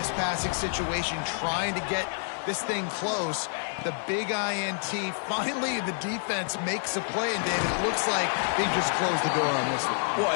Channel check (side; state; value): right; silent; 59 dB below the other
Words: passing situation trying to get this thing close. The big INT, finally the defense makes a play, and David, it looks like they just closed the door on this one. Well,